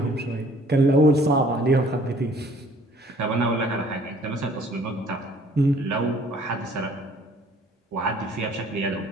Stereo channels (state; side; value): normal; both; correlation 0.56